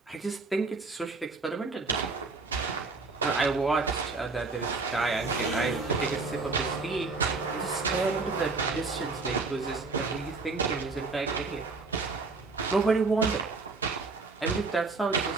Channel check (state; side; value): quieter; left; 3.9 dB